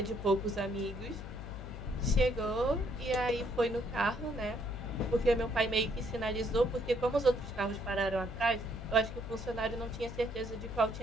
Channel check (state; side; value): noise; left; hum, 9 dB below the sound